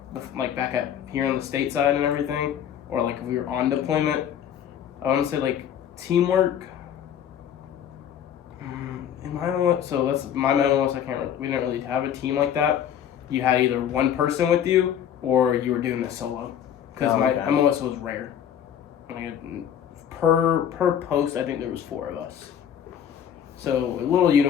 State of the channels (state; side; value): quieter; right; 9.4 dB